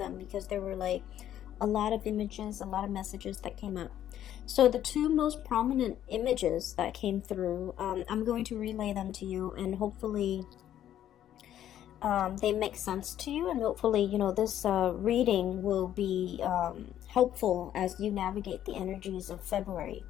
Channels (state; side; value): quieter; right; 11.3 dB